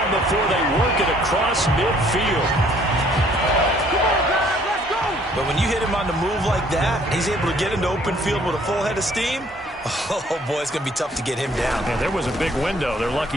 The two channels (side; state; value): both; normal; correlation 0.60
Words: before they work it across midfield. But when you hit him on the move like that, he's able to get into open field with a full head of steam. Oh, boy, it's going to be tough to get him down. Yeah, there was a big window. They're